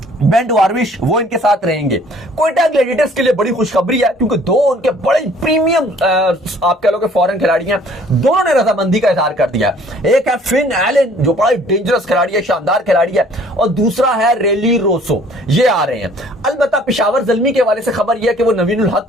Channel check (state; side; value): normal; both; correlation 0.55